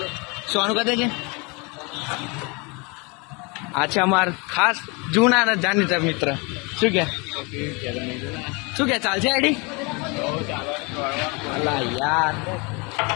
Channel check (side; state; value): right; quieter; 29.2 dB